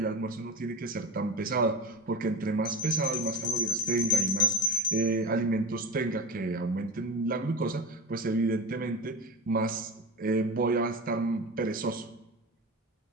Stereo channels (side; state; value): both; normal; correlation 0.27